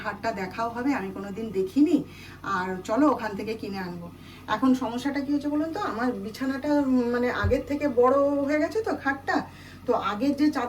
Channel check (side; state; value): both; identical; correlation 1.00